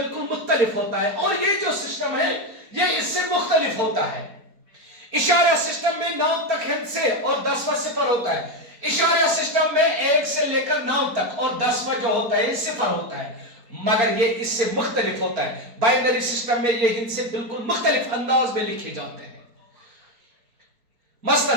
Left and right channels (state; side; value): late; left; 4.3 ms